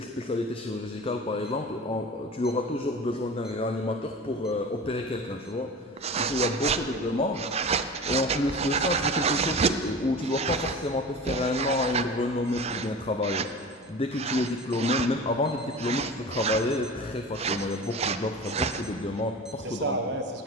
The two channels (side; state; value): both; normal; correlation 0.35